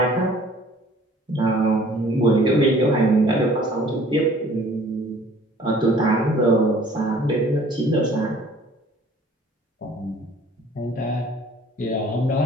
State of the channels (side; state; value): both; normal; correlation 0.53